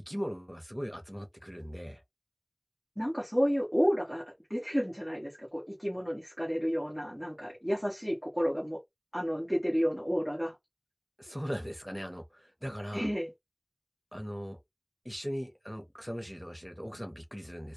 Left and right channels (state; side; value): identical; both; correlation 1.00